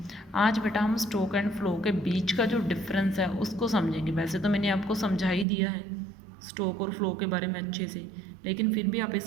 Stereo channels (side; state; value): left; drops out; at 5.5 s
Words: आज बेटा हम स्टॉक एंड फ्लो के बीच का जो डिफरेंस है उसको समझेंगे। वैसे तो मैंने आपको समझा ही दिया है स्टॉक और फ्लो के बारे में अच्छे से, लेकिन फिर भी आप